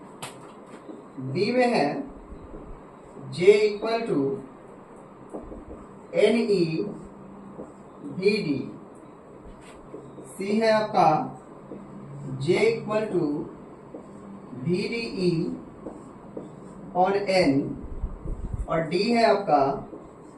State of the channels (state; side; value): identical; both; correlation 1.00